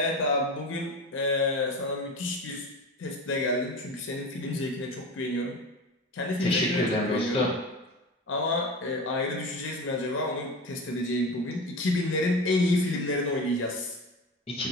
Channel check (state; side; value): normal; both; correlation 0.29